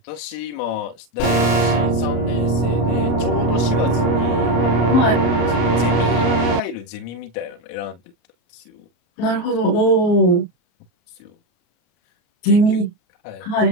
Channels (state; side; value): late; right; 34 ms